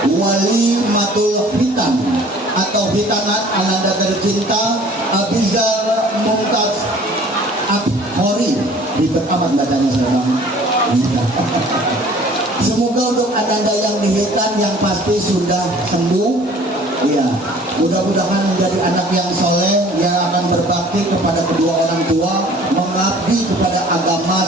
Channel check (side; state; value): both; normal; correlation 0.51